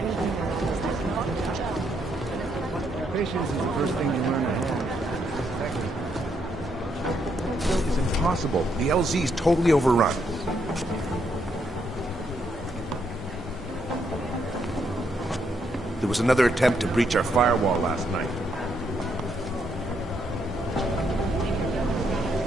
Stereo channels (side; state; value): both; normal; correlation 0.76